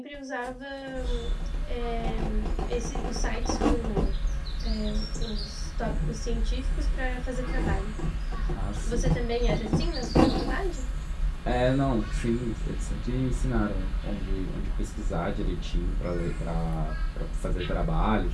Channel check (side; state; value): both; identical; correlation 1.00